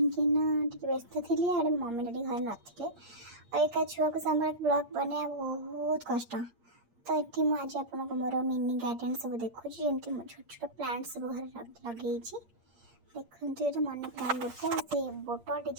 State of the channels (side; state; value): left; late; 8.6 ms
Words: व्यस्त थी आड़े मम्मी डैडी घर नथिले और एक छुआ को संभाल ब्लॉग बना बहुत कष्ट। तो ये मुझे आपको मोर मिनी गार्डन सब देखुँ जमी छोट छोट प्लांट सब घर लगे देखते ये मनी प्लांट गोटे से बोटल